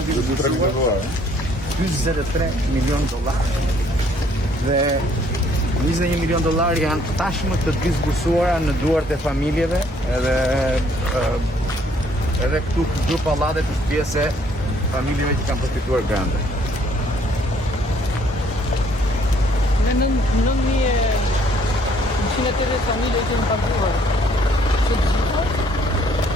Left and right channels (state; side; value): normal; both; correlation 0.63